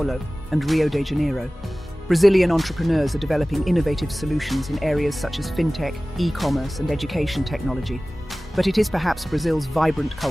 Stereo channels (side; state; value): both; normal; correlation 0.98